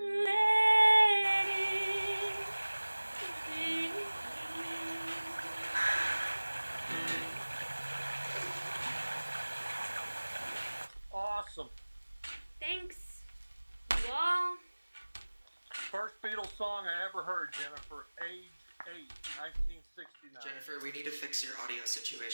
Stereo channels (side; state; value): both; inverted; correlation -1.00